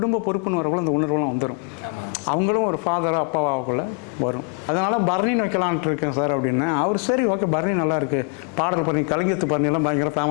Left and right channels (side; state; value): right; quieter; 38.3 dB